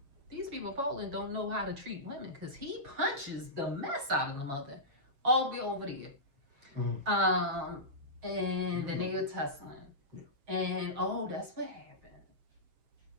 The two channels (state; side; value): late; left; 7.1 ms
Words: These people in Poland don't know how to treat women, because he punches the mess out of the mother all the way over there. And then they were tussling. Yeah. And that's what happened.